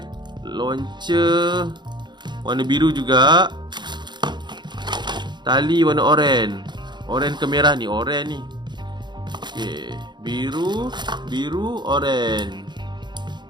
launcher warna biru juga. Tali warna oranye. Oranye ke merah ni, oranye ni. Okay, biru, oranye.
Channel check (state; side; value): late; left; 0.21 ms